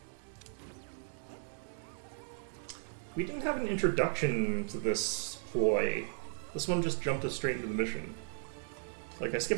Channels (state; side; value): silent; left; 54 dB below the other